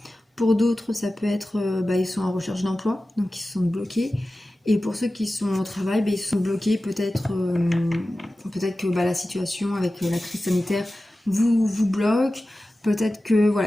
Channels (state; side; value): normal; both; correlation 0.95